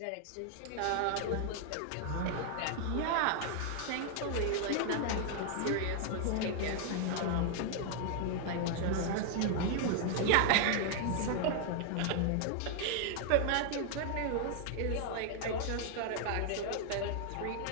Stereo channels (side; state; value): both; different; correlation 0.00